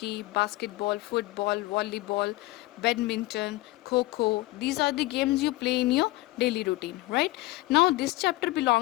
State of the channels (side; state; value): right; quieter; 19.3 dB